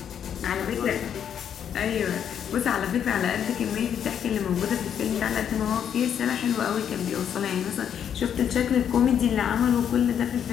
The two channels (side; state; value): right; quieter; 8.7 dB